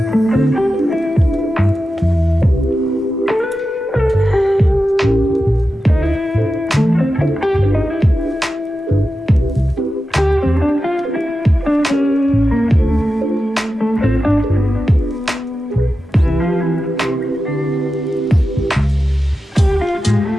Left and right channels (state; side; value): normal; both; correlation 0.92